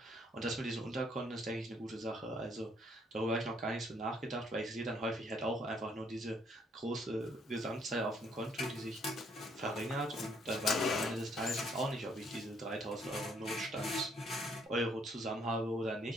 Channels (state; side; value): normal; both; correlation 0.67